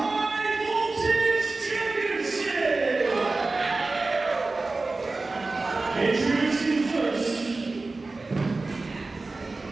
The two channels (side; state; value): left; quieter; 3.5 dB